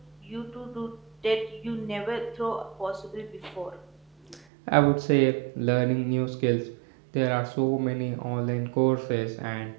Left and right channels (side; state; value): left; drops out; at 4.5 s